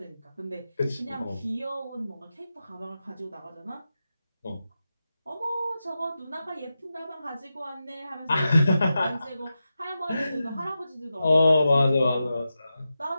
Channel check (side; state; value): both; inverted; correlation -0.91